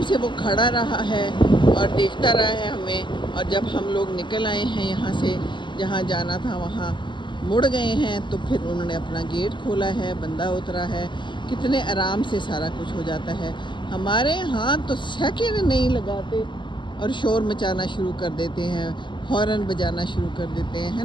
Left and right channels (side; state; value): right; late; 0.23 ms